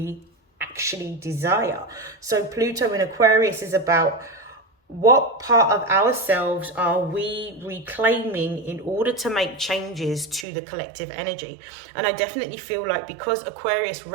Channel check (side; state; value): left; drops out; at 10.5 s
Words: actually desire. So Pluto in Aquarius is about what part of ourselves are we reclaiming in order to make changes to the collective energy. And I definitely feel like, because Aquarius